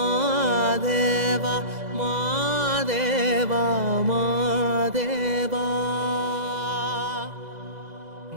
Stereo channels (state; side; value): late; left; 2.0 ms